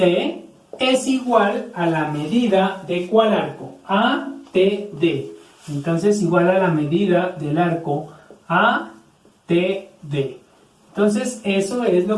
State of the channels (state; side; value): identical; both; correlation 1.00